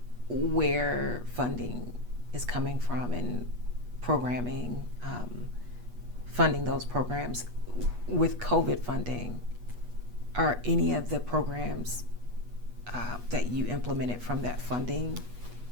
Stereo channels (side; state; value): left; late; 8.3 ms